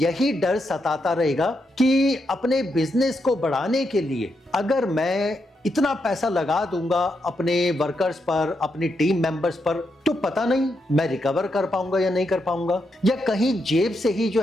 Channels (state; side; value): normal; both; correlation 0.82